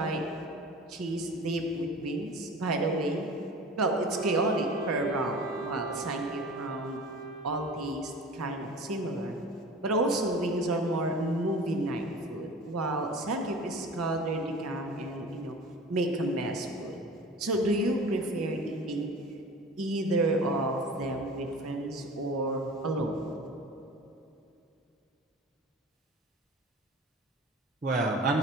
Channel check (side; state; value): both; normal; correlation 0.39